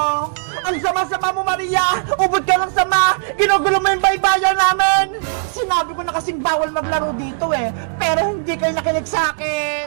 Ang sama-sama mo, Maria! Ubod ka lang sama! Ginugulo mo yung baybayan namin! Sinabi ko na kasing bawal maglaro dito pero hindi kayo nakinig sa akin!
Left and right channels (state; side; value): silent; left; digital silence